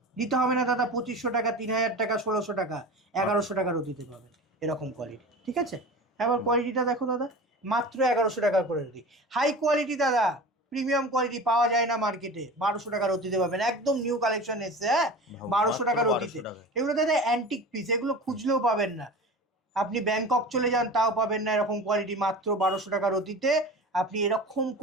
দিতে হবে না দাদা 2500 টাকা, 3000 টাকা, 1600 টাকা, 1100 টাকা রতিতে পাবেন এরকম কোয়ালিটি, ঠিক আছে? এবার কোয়ালিটিটা দেখো দাদা, মাত্র 1100 টাকা করে রতি। হাই কোয়ালিটি দাদা, প্রিমিয়াম কোয়ালিটি পাওয়া যায় না মার্কেটে, 1200 টাকা রতিতে পাবেন, একদম নিউ কালেকশন এসছে। হ্যাঁ 1200 টাকা রতিতে। এগুলো দাদা অ্যান্টিক পিস, এগুলো খুঁজলেও পাবেন না, আপনি ব্যাংকক চলে যান তাও পাবেন না এরকম কোয়ালিটি। মাত্র 1200 টাকা রতিতে আপনি এরকম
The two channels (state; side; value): normal; both; correlation 0.34